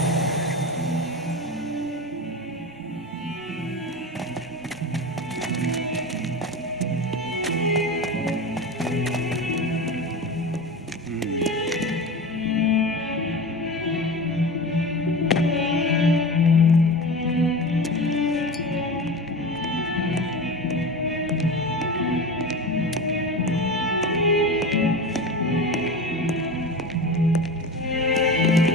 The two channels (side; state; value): both; normal; correlation 0.28